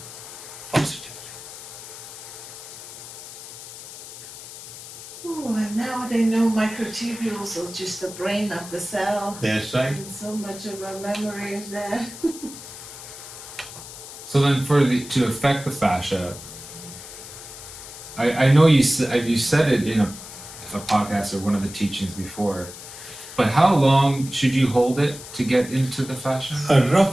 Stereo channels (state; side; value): noise; left; hiss, 13 dB below the sound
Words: positively. Oh, and now they know microtubules are just the brain of the cell. That's right. And so much of our memory is there. So then, to affect the fascia, I know you said it in a podcast or one of the teachings before, but how long should you hold it to get into the fascia?